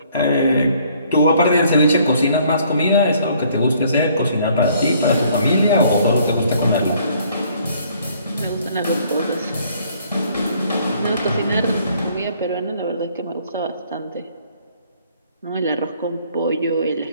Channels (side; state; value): both; inverted; correlation -0.62